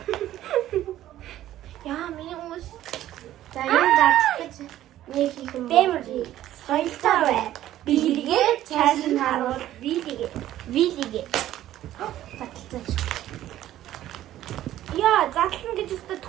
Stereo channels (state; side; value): quieter; left; 13.2 dB